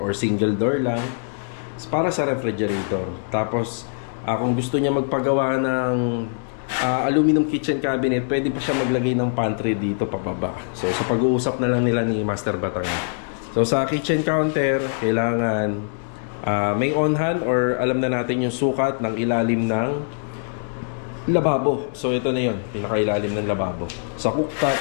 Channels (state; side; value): silent; right; digital silence